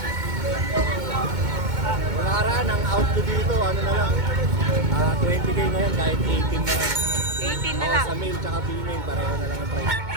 Nakaraan, ang out ko dito, ano na lang, 20k ngayon kahit 18 na lang. 18 na Oo, lang. sa male tsaka female, pareho na lang ang price.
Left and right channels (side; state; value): left; late; 2.2 ms